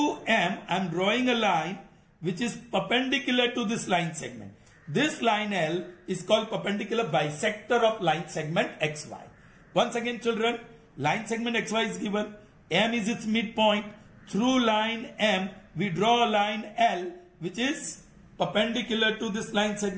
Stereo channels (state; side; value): identical; both; correlation 1.00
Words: M, I'm drawing a line which is perpendicular to this line segment. This line L is called perpendicular bisector of line segment XY. Once again, children, line segment XY is given. M is its midpoint. Through line M, we draw a line L which is perpendicular to this line